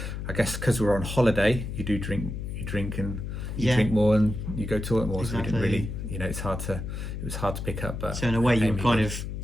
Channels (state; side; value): noise; left; hum, 6 dB below the sound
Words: I guess because we're on holiday, you drink and you drink more and you go to toilet more. Exactly. So we didn't really, it was hard to pick up. But so in a way, you were kind of